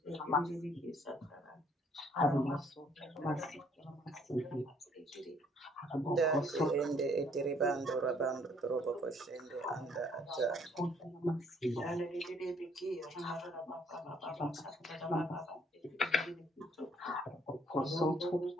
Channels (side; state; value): both; normal; correlation 0.63